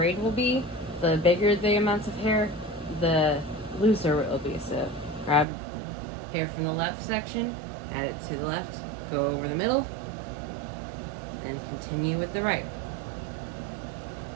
will be. The bigger the amounts of hair, the looser it will be. So grab hair from the left section, add it to the left, go over the middle, then continue with the right.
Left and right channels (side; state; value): left; drops out; at 5.5 s